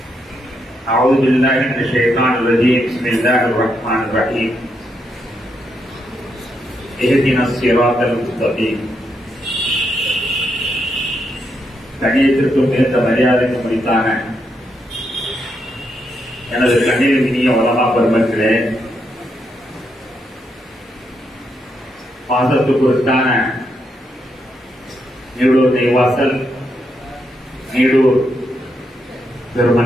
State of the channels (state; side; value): normal; both; correlation 0.80